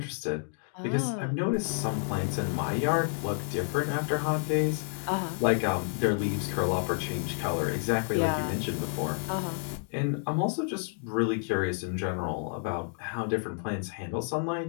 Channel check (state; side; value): silent; right; 58 dB below the other